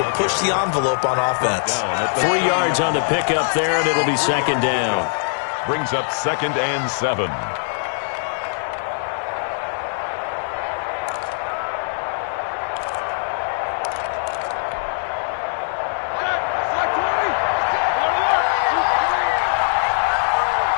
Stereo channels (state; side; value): silent; right; digital silence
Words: push the envelope on offense. 3 yards on the pickup there, and it'll be second down. Brings up 2nd and 7.